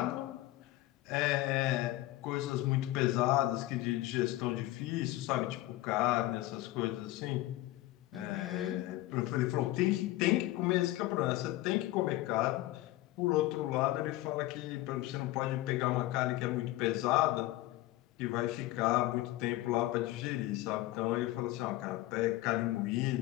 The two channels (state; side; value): quieter; right; 17.0 dB